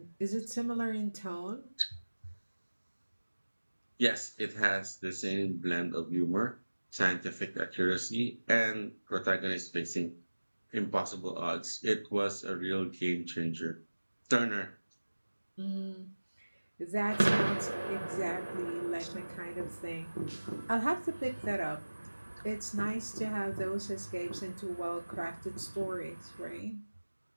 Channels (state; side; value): inverted; both; correlation -1.00